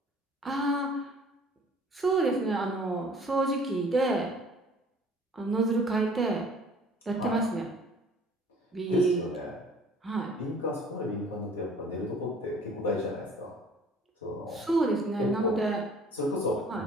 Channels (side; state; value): both; normal; correlation 0.52